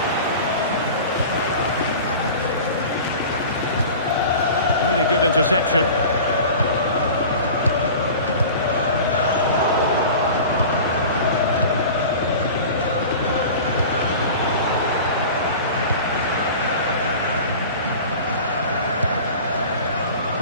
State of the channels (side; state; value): both; inverted; correlation -0.38